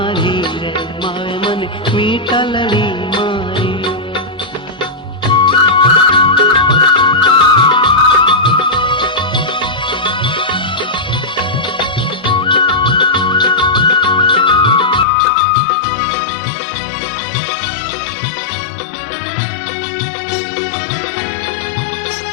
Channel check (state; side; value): drops out; right; at 15.1 s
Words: रे मावे मन मीतलड़ी मारी रे